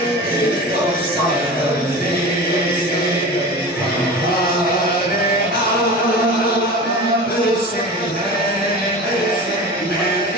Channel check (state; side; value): normal; both; correlation 0.33